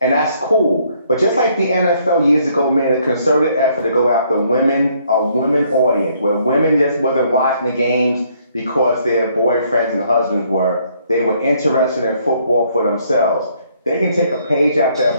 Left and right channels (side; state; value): both; inverted; correlation -0.67